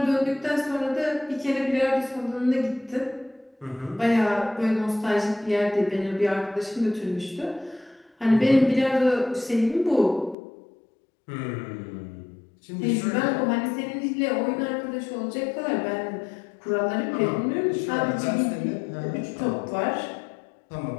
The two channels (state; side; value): drops out; right; at 10.4 s